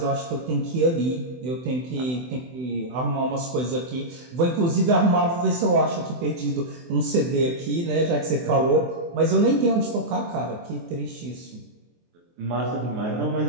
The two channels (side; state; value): left; late; 24 ms